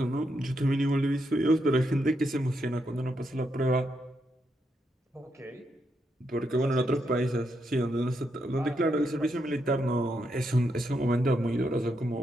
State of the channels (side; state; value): both; normal; correlation 0.81